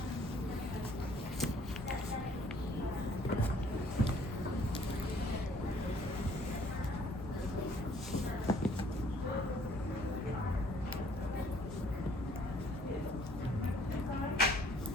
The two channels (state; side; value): normal; both; correlation 0.60